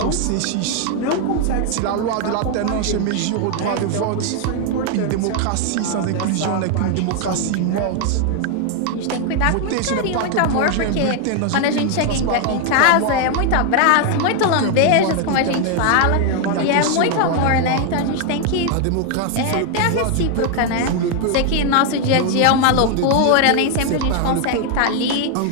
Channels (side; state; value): both; different; correlation 0.01